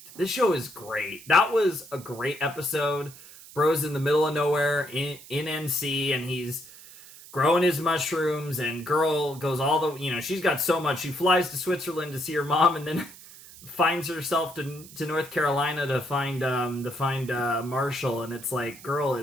This show is great. That was a great episode. Bro's in the middle of nowhere in NC, and he's growing his mushrooms, and girl goes she's got so much. She flies to Switzerland to see her mom, and then finds herself to North Carolina to find Marshall, and it's like, girl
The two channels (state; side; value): noise; right; hiss, 18 dB below the sound